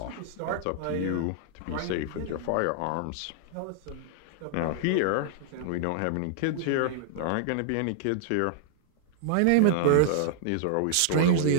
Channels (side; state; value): both; different; correlation -0.01